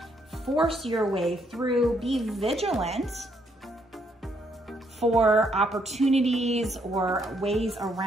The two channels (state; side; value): normal; both; correlation 0.72